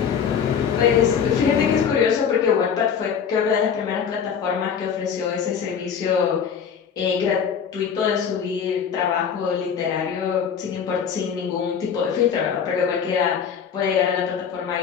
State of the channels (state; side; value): quieter; right; 7.3 dB